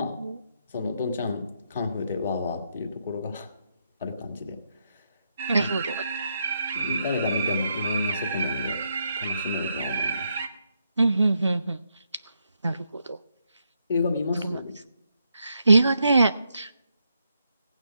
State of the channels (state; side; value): inverted; both; correlation -0.80